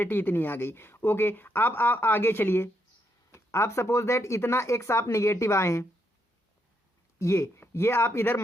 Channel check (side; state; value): both; normal; correlation 0.78